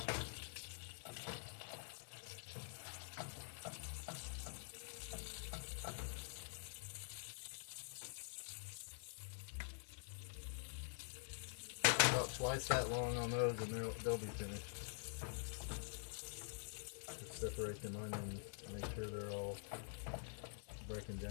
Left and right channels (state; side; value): silent; right; digital silence